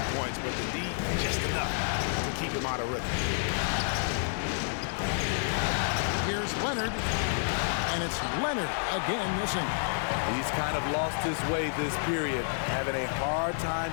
points, but the D, just enough to keep him out of rhythm. Here's Leonard, and it's Leonard again missing. He's kind of lost his way this period, having a hard time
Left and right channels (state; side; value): silent; right; 58 dB below the other